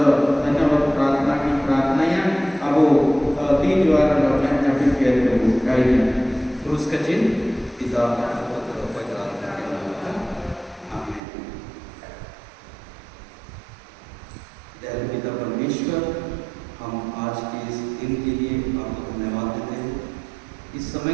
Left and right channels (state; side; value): drops out; left; at 11.2 s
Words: धन्यवाद प्रार्थना की प्रार्थना या अब तीन द्वारा लोगों ने जब किया तो कहीं क्रूस का चिन्ह पिता पुत्र पवित्र आत्मा के नाम में आमीन। दयालु पिता परमेश्वर, हम आज के इस दिन के लिए आपको धन्यवाद देते हैं। इस समय